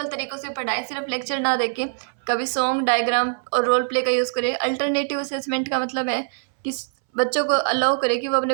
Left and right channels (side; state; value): left; silent; 63 dB below the other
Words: तरीक़ों से पढ़ाएं, सिर्फ लेक्चर ना देके कभी सॉन्ग, डायग्राम और रोल प्ले का यूज़ करें। अल्टरनेटिव असेसमेंट का मतलब है कि बच्चों को अलाउ करे कि वो अपने